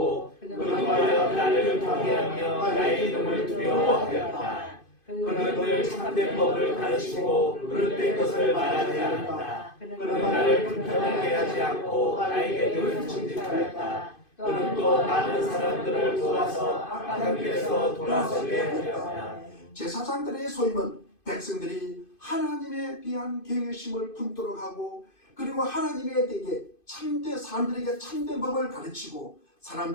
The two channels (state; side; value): late; right; 2.5 ms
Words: 그동안 나를 경외하며 나의 이름을 두려워하였다. 그는 늘 참된 법을 가르치고 그릇된 것을 말하지 않았다. 그는 나를 불편하게 하지 않고 나에게 늘 정직하였다. 그는 또 많은 사람들을 도와서 악한 길에서 돌아서게 하였다. 제사장들의 소임은 백성들이 하나님에 대한 경외심을 품도록 하고 그리고 하나님에 대해 사람들에게 참된 법을 가르치고